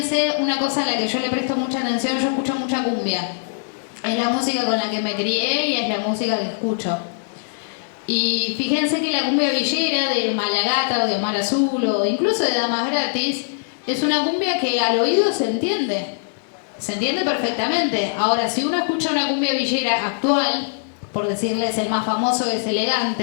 una cosa a la que yo le presto mucha atención, yo escucho mucha cumbia. Es la música con la que me crié y es la música que escucho. Y fíjense que la cumbia villera de Malagata o de Omar Azul o incluso de Damas Gratis es una cumbia que al oído se entiende perfectamente. Ahora, si uno escucha una cumbia villera actual, por decirles el más famoso es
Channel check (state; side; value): silent; right; digital silence